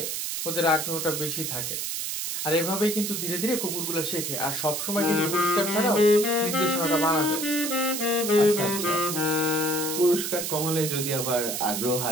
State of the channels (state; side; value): noise; right; hiss, 3 dB below the sound